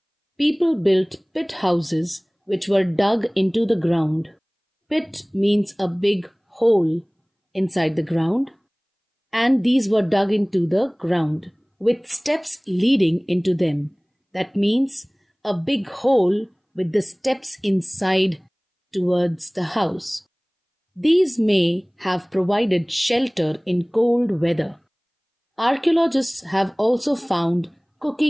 People built pit houses which were dug into the ground. Pit means a big hole inside the ground, and these were dug into the ground with steps leading into them. That means a big hole with the steps inside towards the house. These may have provided shelter in cold weather. Archaeologists have also found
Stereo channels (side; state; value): both; identical; correlation 1.00